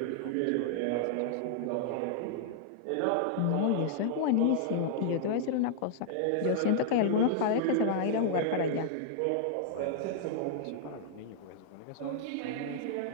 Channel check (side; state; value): both; different; correlation -0.01